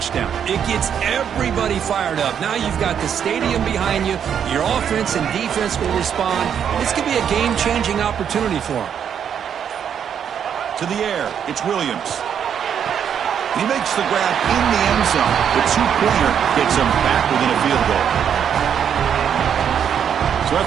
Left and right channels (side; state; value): left; quieter; 8.3 dB